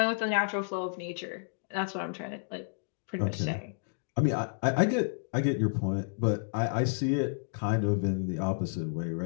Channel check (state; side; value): silent; right; digital silence